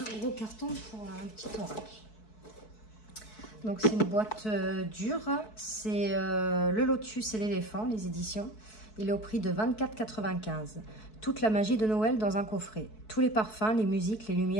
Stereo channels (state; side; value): late; right; 4.6 ms